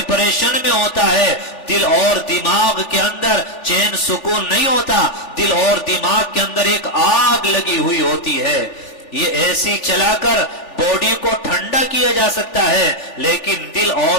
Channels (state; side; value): late; right; 3.4 ms